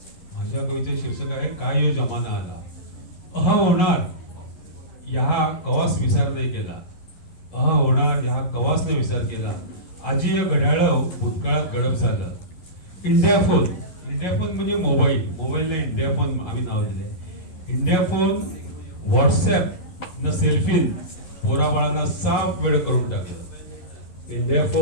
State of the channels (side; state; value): right; late; 11 ms